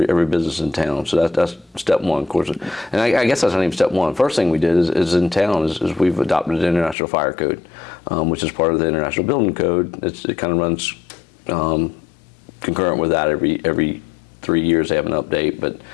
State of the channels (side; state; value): right; drops out; at 7.0 s